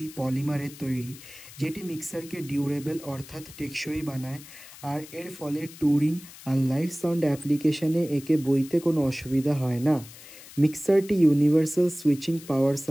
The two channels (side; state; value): left; noise; hiss, 18 dB below the sound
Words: পলিমারের তৈরি, যেটি মিক্সারকে ডিউরেবল অর্থাৎ টেকসই বানায়, আর এর ফলে ট্যুরিং আর লাইভ সাউন্ড অ্যাপ্লিকেশনে একে বইতে কোনো অসুবিধা হয় না। মিক্সারটি universal switching power